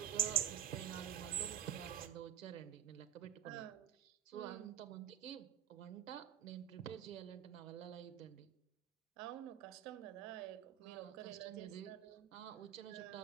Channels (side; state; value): left; quieter; 10.0 dB